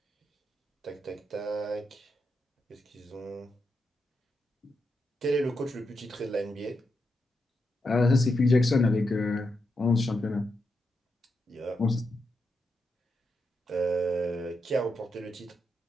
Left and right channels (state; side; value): normal; both; correlation 0.85